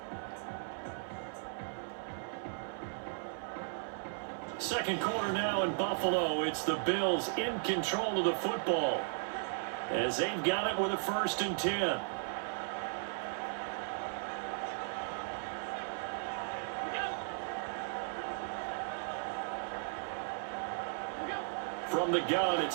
Second quarter now in Buffalo. It's the Bills in control of the football as they've got it with a 1st and 10. From the gun,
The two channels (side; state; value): left; silent; 54 dB below the other